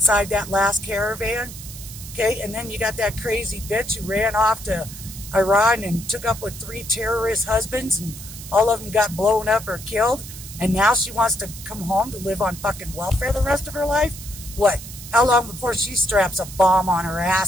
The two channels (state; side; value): noise; right; hiss, 13 dB below the sound